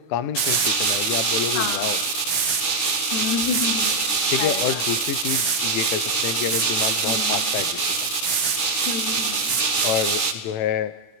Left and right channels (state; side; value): late; right; 17 ms